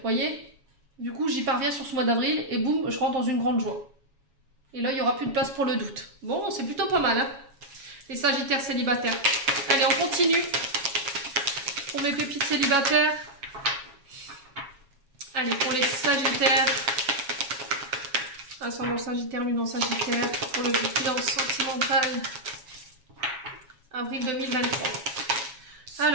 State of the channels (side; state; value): left; late; 7.2 ms